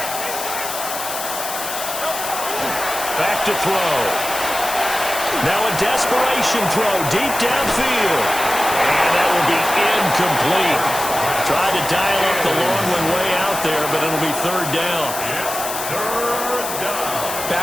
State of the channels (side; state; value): left; noise; hiss, 6 dB below the sound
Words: Back to throw. Now a desperation throw deep downfield. And that will be incomplete. Tried to dial up the long one way out there, but it'll be 3rd down.